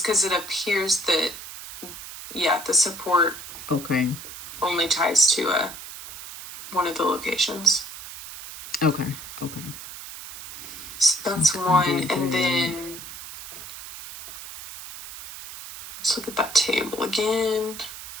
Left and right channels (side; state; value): right; noise; hiss, 11 dB below the sound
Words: because it appears that the support only ties to one of the locations. Okay. So that's one, and then let's look at that table again.